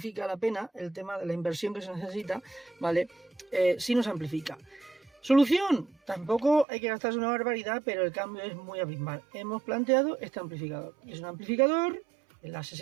la pena el tema de la inversión que se necesita, ¿vale? Si nos amplifica. Solución, tampoco hay que gastarse una barbaridad, pero el cambio es muy abismal. Hemos planteado este amplificador. Es un amplificador en la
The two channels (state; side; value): drops out; left; at 6.7 s